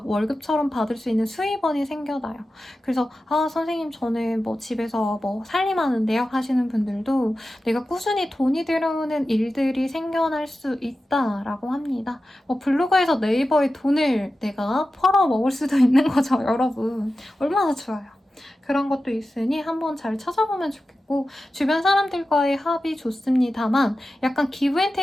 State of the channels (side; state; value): both; normal; correlation 0.93